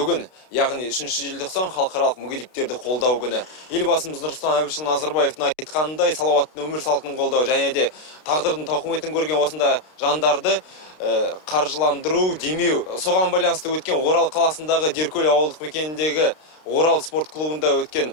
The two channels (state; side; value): late; right; 32 ms